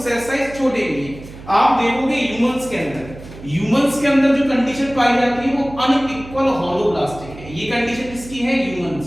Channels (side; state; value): right; noise; hum, 16 dB below the sound